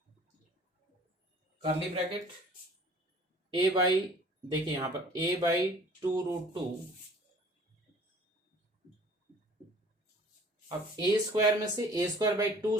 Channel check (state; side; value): normal; both; correlation 0.50